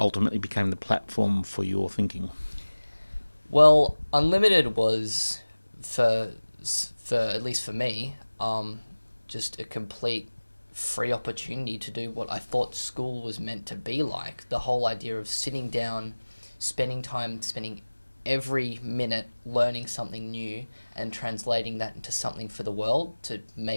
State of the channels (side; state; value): both; inverted; correlation -1.00